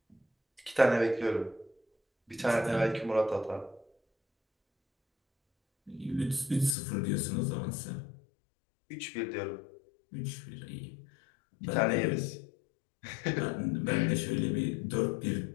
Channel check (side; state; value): right; drops out; at 6.8 s